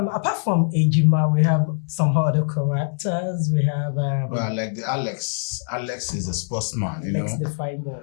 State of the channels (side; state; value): right; silent; digital silence